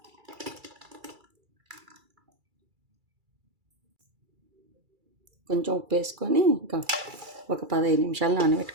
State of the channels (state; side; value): late; left; 2.3 ms